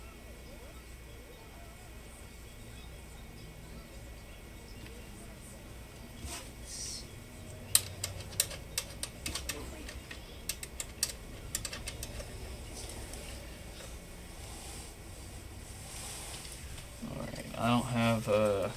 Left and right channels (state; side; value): identical; both; correlation 1.00